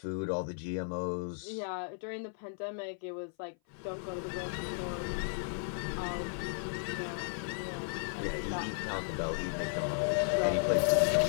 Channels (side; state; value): right; silent; 54 dB below the other